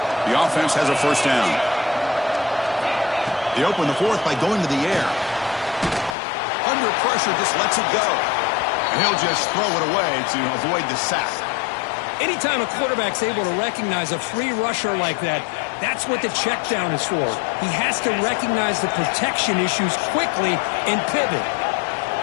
The offense has a first down. They open the fourth by going to the air. Under pressure, just lets it go. And he'll just throw it away to avoid the sack. Anytime a quarterback's able to recognize a free rusher like that, that's what the check down is for. He has to recognize the protection issues quickly and pivot.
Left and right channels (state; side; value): drops out; right; at 6.2 s